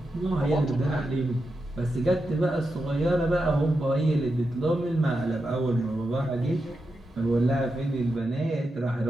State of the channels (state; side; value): normal; both; correlation 0.88